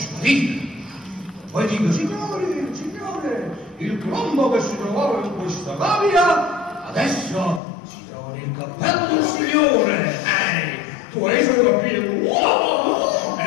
Poi dico, signore, il colombo che si trovava in questa gabbia adesso si trova nel cappello del signore. Tu hai solo capito? Wow!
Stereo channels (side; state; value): right; drops out; at 7.6 s